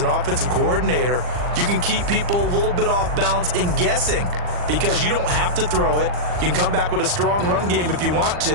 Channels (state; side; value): late; left; 40 ms